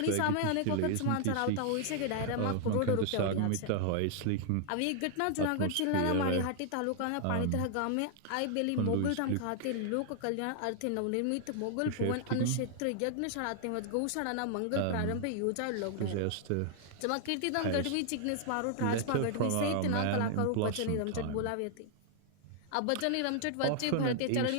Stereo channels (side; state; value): both; different; correlation -0.01